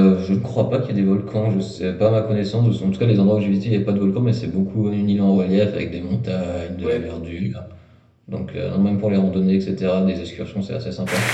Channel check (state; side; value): identical; both; correlation 1.00